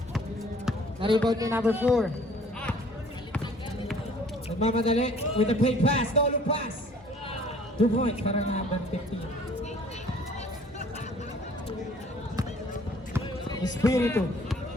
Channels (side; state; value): both; normal; correlation 0.54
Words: Na-rebound ni number 4. Nagmamadali with a play pass. No-look pass. 2 points para number 15. Espiritu.